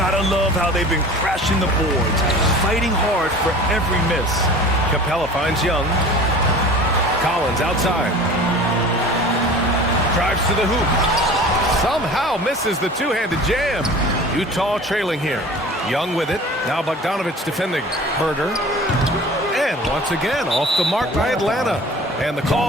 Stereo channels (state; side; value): normal; both; correlation 0.41